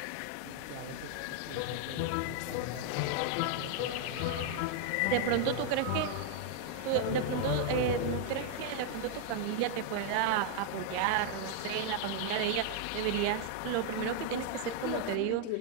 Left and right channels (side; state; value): both; different; correlation 0.00